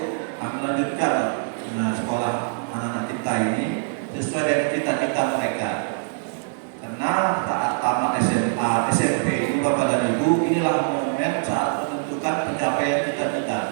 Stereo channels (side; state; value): left; silent; digital silence